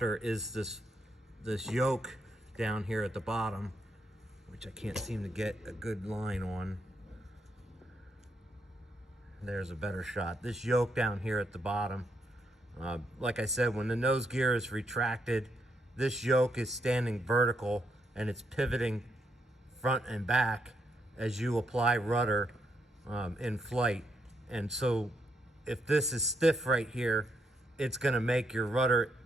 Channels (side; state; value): both; normal; correlation 0.78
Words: is this yoke down here at the bottom, which I can't seem to get a good line on. There's a better shot. This yoke down here at the bottom. Like I said, when the nose gear is retracted, this yoke is standing vertical and it's pivoting front and back as you apply rudder in flight. And so if this is stiff right here, it's going to make your rudder